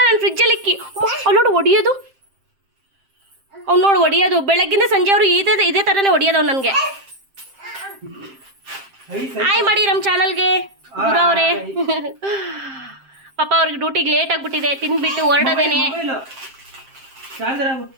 ನಾನು ಫ್ರಿಜ್ಜಲ್ಲಿ ಇಕ್ಕಿ ಅವ್ನು ನೋಡು ಹೊಡಿಯೋದು. ಅವ್ನು ನೋಡು ಹೊಡಿಯೋದು. ಬೆಳಗ್ಗಿಂದ ಸಂಜೆ ಅವರು ಇದೇ ಥರನೇ ಹೊಡಿಯೋದು ಅವ್ನು ನನಗೆ. ಹಾಯ್ ಮಾಡಿ ನಮ್ಮ ಚಾನಲ್ಗೆ ಗುರು ಅವರೇ. ಪಾಪ ಅವ್ರಿಗೆ ಡ್ಯೂಟಿಗೆ ಲೇಟ್ ಆಗಿಬಿಟ್ಟಿದೆ, ತಿಂದ್ಬಿಟ್ಟು ಹೊರಡೋದೇನೆ.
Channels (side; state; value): left; late; 7.6 ms